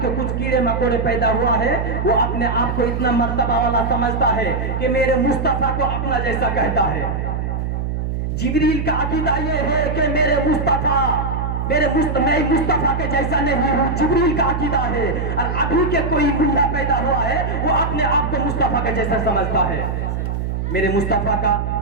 کے کچھ کیڑے مکوڑے پیدا ہوا ہے، وہ اپنے آپ کو اتنا مرتبہ والا سمجھتا ہے کہ میرے مصطفیٰ کو اپنا جیسا کہتا ہے. جبریل کا عقیدہ یہ ہے کہ میرے مصطفیٰ میں مصطفیٰ کے جیسا نہیں ہوں. جبریل کا عقیدہ ہے. اور ابھی کے کوئی ملا پیدا ہوا ہے وہ اپنے آپ کو مصطفیٰ کے جیسا سمجھتا ہے. میرے مصطفیٰ کا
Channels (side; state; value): right; noise; hum, 2 dB below the sound